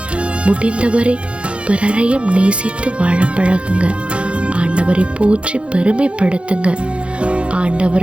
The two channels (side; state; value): left; late; 0.059 ms